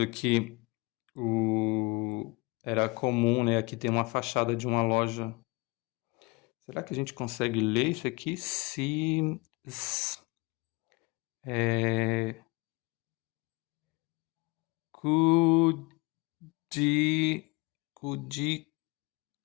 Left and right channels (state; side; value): quieter; right; 26.2 dB